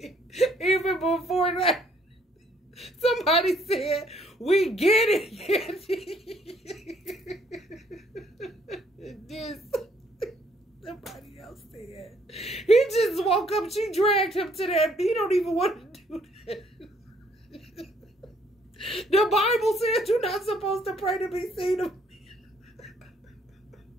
Even before that, somebody said, "We get it." This, somebody else said, he just woke up. She dragged him to that. He don't even want to do that. The Bible says you're not supposed to pray to be seen of me.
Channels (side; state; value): both; normal; correlation 0.65